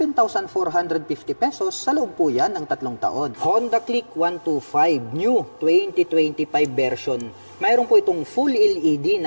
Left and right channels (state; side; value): inverted; both; correlation -1.00